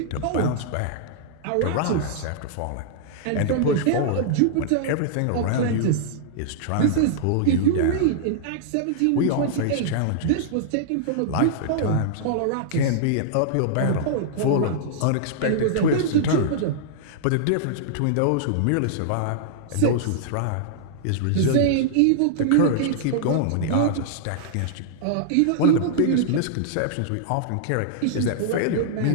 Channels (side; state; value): both; different; correlation -0.01